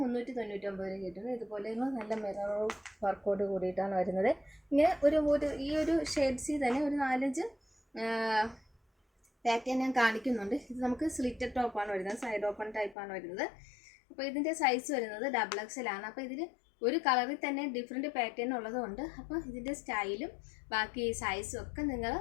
399 കിട്ടുന്നത്. ഇതുപോലെ നല്ല മിറർ വർക്കോട് കൂടിയിട്ടാണ് വരുന്നത്. ഇങ്ങനെ ഈ ഒരു ഷെയ്ഡ്സിൽ തന്നെ ഒരു 4-5 പാറ്റേൺ ഞാൻ കാണിക്കുന്നുണ്ട്. ഇത് നമുക്ക് സ്ലിറ്റഡ് ടോപ്പാണ് വരുന്നത്, സൈഡ് ഓപ്പൺ ടൈപ്പാണ് വരുന്നത്. അപ്പോൾ ഇതിൻ്റെ സൈസ് വരുന്നത് XXL ആണ്. അപ്പോൾ ഇതിൽ ഒരു കളറിൽ തന്നെ ഡിഫറെൻറ്റ് പാറ്റേൺ ഉള്ളതുകൊണ്ട് അപ്പോൾ ഇതിൻ്റെ സ്റ്റൈലും ബാക്കി സൈസും ഒക്കെ നിങ്ങൾ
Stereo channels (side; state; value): right; drops out; at 13.0 s